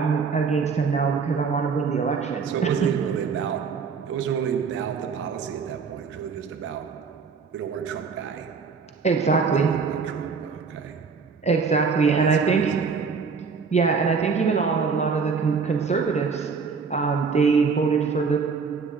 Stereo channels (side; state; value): left; quieter; 5.3 dB